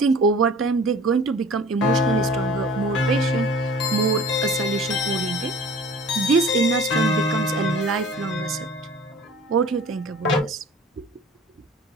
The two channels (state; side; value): normal; both; correlation 0.45